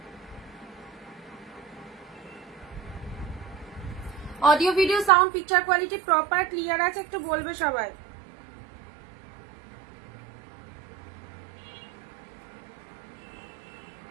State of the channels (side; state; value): left; drops out; at 5.1 s